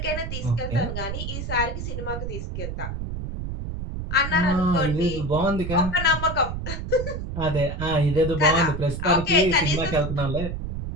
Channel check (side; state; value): right; noise; rumble, 5 dB below the sound